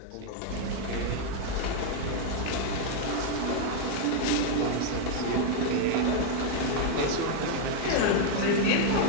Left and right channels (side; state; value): both; different; correlation 0.00